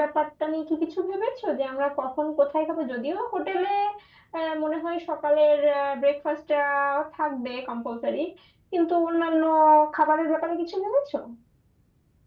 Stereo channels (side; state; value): both; identical; correlation 1.00